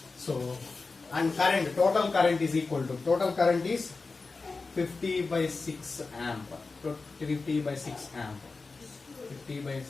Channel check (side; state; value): right; quieter; 4.0 dB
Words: So, and current, total current is equal to, total current is 50 by 6 amp. 50 by 6 amp. 50 by